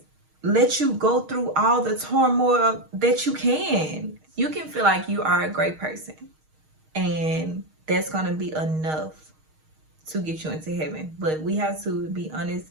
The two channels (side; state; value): left; late; 6.4 ms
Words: let you go through all the turmoil that you can. You can feel like you are a great person, and that's going to be enough to get you into heaven. But we have to be